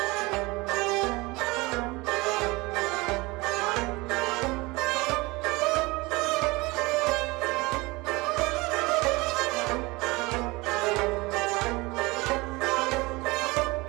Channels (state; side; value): quieter; left; 23.4 dB